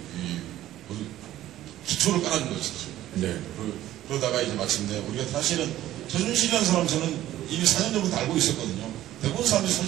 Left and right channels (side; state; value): left; quieter; 13.9 dB